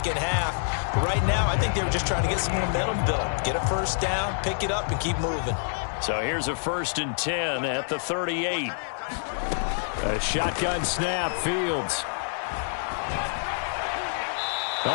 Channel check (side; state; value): right; silent; digital silence